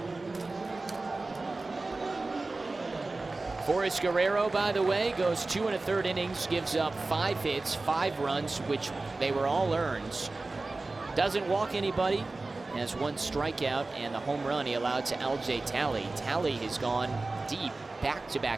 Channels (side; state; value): left; quieter; 3.3 dB